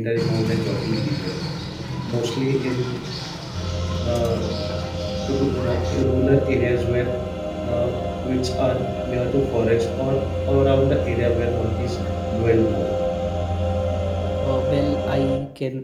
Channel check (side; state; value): both; identical; correlation 1.00